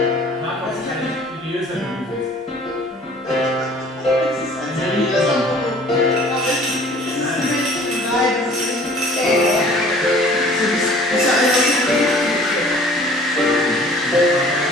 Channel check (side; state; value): both; normal; correlation 0.51